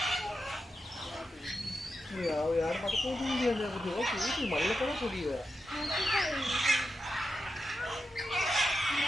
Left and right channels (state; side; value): normal; both; correlation 0.88